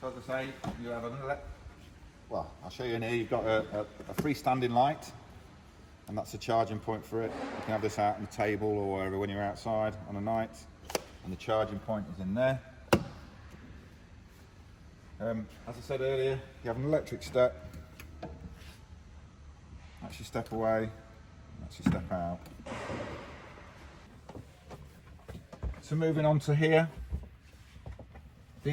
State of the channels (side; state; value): both; identical; correlation 1.00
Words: So as I say, you have another. Well, I'll show you in here. You've got a freestanding light, and that's a charging point for it. You can have this out on the table or wherever when you're outside on a night, and the charging point is in there. As I said earlier, you have an electric step. That's your step away, that's your step out. So moving on to here,